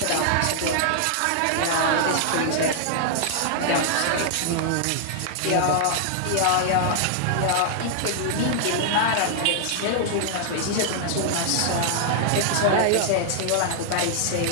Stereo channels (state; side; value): different; both; correlation -0.01